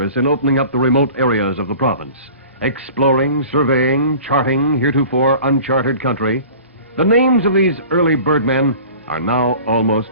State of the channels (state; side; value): inverted; both; correlation -0.43